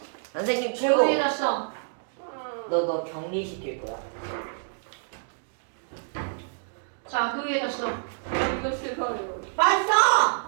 선생님 그 위에 최고. 놨어. 너 격리시킬 거야. 자 그 위에 놨어. 이거 싫어요. 빨리 써.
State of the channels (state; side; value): silent; left; digital silence